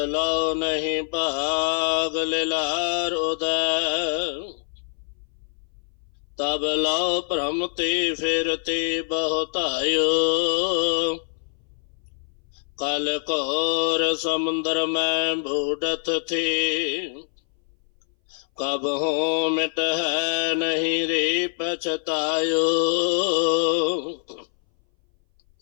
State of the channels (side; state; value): right; silent; 60 dB below the other